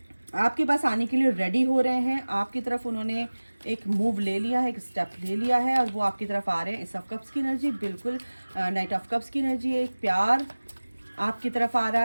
आपके पास आने के लिए रेडी हो रहे हैं। आपकी तरफ उन्होंने एक मूव ले लिया है, एक स्टेप ले लिया है और वो आपकी तरफ आ रहे हैं। इस ऑफ कप्स की एनर्जी बिल्कुल नाइट ऑफ कप्स की एनर्जी है। एक प्यार आपकी तरफ आ रहा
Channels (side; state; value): both; inverted; correlation -1.00